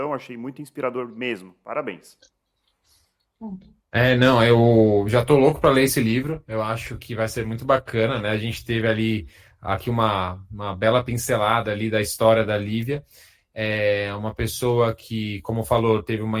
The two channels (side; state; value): both; identical; correlation 1.00